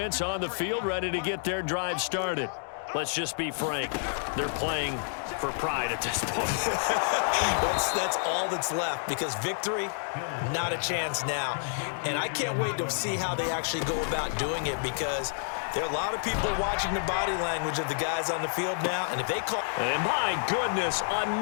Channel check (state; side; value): silent; right; digital silence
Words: on the field ready to get their drive started. Let's just be frank. They're playing for pride at this point. That's all that's left, because victory, not a chance now. And I can't wait to see how they actually go about doing it, because there are a lot of people watching the body language of the guys on the field now, and if they call... And my goodness,